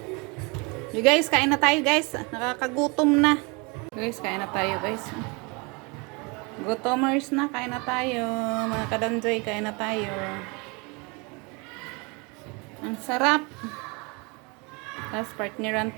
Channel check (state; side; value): quieter; left; 29.4 dB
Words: You guys, kain na tayo guys. Nakakagutom na. Guys, kain na tayo guys. Gutomers na, kain na tayo. Mga kadanjoy, kain na tayo. Ang sarap. Tapos partneran